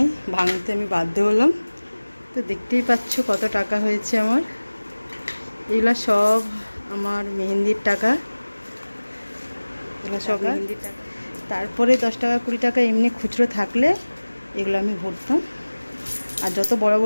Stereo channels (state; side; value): inverted; both; correlation -1.00